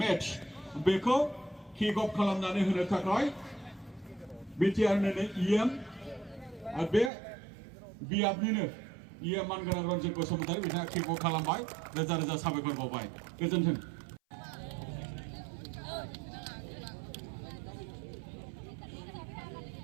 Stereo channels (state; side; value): drops out; left; at 7.1 s